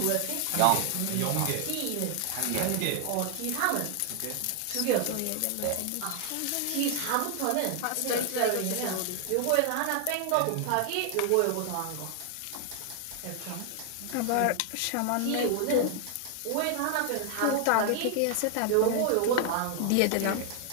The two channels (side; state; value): both; different; correlation 0.00